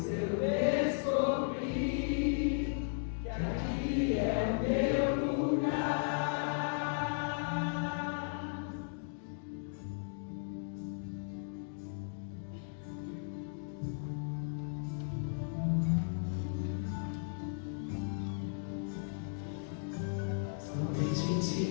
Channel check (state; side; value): silent; right; digital silence